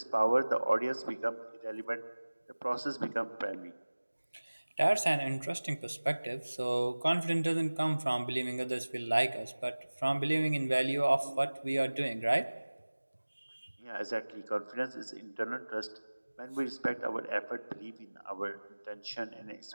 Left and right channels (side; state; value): both; inverted; correlation -1.00